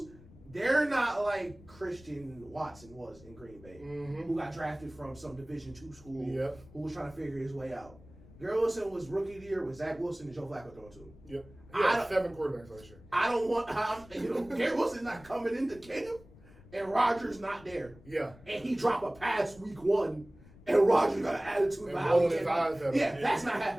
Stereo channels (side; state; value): left; noise; rumble, 22 dB below the sound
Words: they're not like Christian Watson was in Green Bay, who got drafted from some Division II school, who was trying to figure his way out. Garrett Wilson was rookie of the year with Zach Wilson and Joe Flacco throwing to him. Yep. Yeah, 7 quarterbacks last year. I don't want, Garrett Wilson not coming into camp, and Rodgers not there. Yeah. And he dropped a pass week 1, and Rodgers got an attitude And about how he rolling his came eyes out. at Yeah, him. that's not